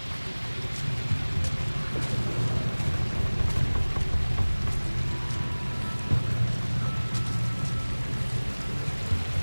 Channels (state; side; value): inverted; both; correlation -1.00